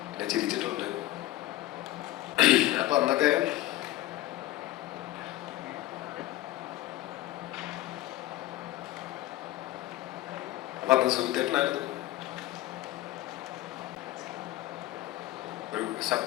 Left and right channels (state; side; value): quieter; right; 15.9 dB